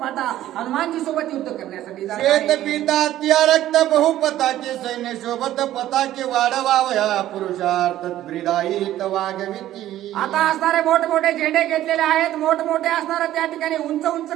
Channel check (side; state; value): left; quieter; 13.4 dB